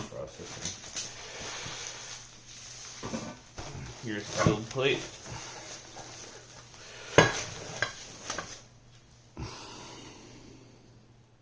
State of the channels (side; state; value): both; identical; correlation 1.00